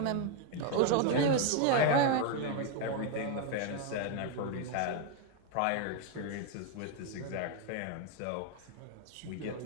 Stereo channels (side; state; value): both; different; correlation 0.01